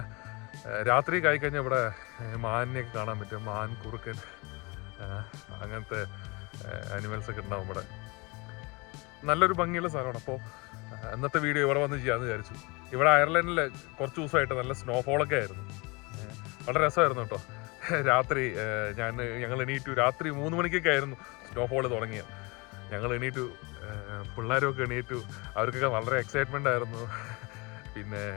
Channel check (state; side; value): quieter; right; 27.3 dB